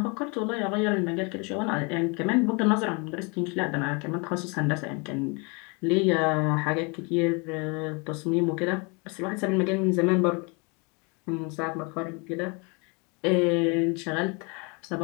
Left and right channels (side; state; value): right; quieter; 31.5 dB